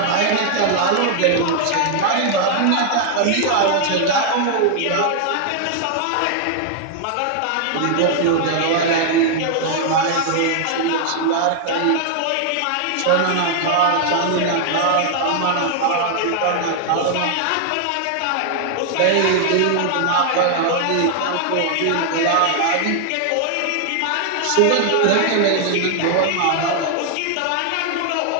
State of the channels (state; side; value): different; both; correlation 0.00